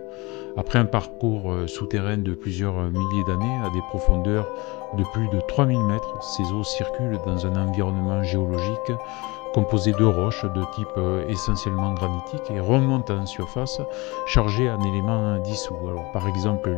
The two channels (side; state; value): right; quieter; 24.5 dB